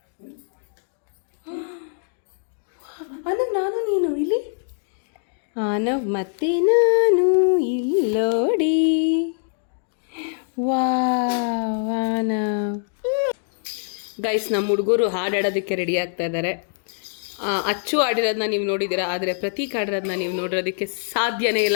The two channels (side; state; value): right; silent; digital silence